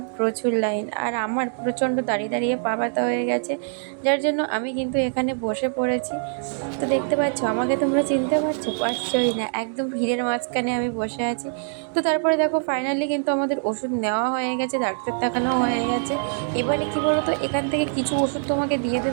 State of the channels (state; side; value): silent; left; digital silence